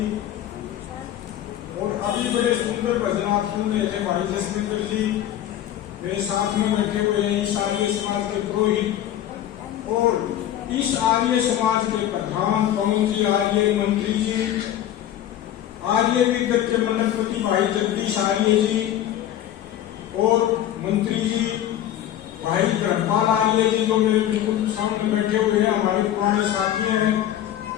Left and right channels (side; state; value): right; quieter; 11.7 dB